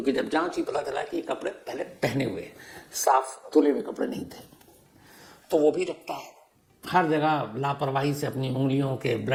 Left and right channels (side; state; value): both; identical; correlation 1.00